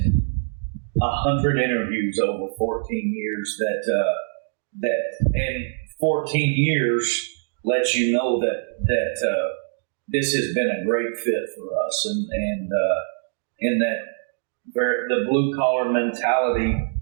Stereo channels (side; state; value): left; silent; digital silence